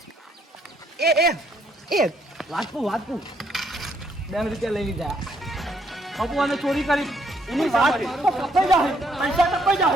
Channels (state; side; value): normal; both; correlation 0.70